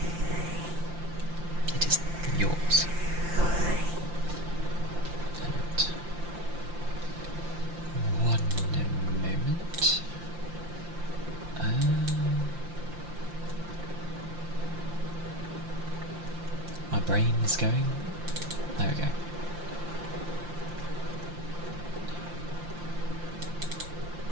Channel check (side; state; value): left; late; 5.7 ms